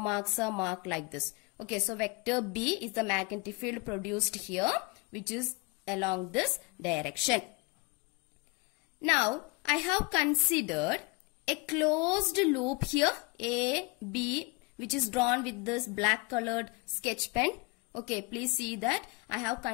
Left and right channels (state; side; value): quieter; right; 27.9 dB